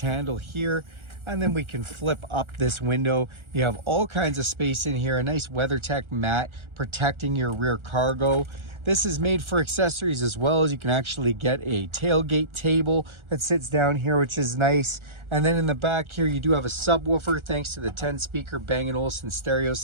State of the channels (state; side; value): late; left; 1.4 ms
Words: here, and then we can flip up this window. You have all kinds of space in here, a nice WeatherTech mat protecting your rear cargo. This is made for accessories as well, as you can actually get a tailgate table that sits down here, which is nice. And then in the back here, you do have a subwoofer thanks to the 10-speaker Bang & Olufsen stereo